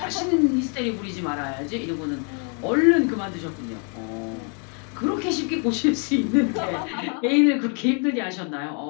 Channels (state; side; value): quieter; right; 39.8 dB